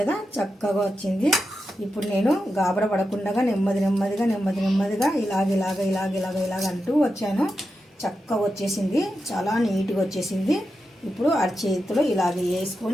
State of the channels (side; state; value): both; normal; correlation 0.89